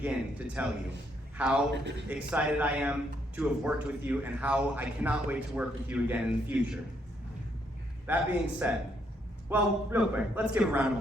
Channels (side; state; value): both; normal; correlation 0.73